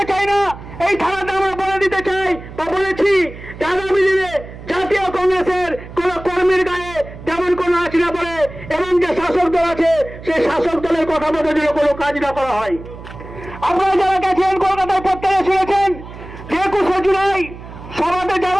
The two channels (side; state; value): right; noise; hum, 14 dB below the sound